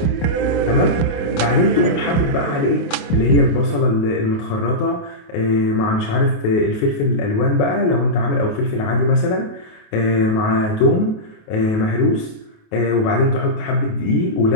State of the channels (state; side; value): late; right; 27 ms